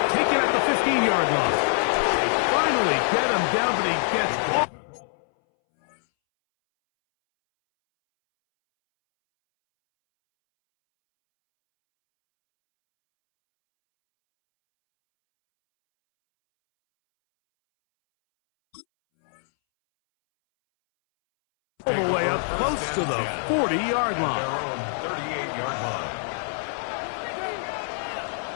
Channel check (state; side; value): silent; right; 62 dB below the other